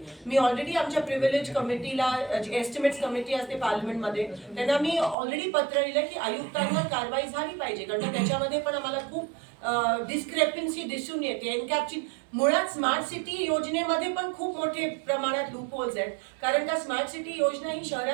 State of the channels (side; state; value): left; drops out; at 5.2 s